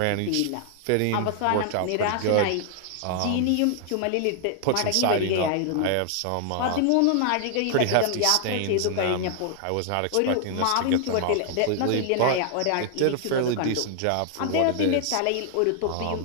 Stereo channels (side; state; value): both; different; correlation 0.00